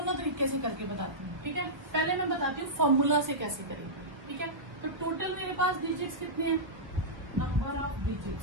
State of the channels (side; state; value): left; late; 1.3 ms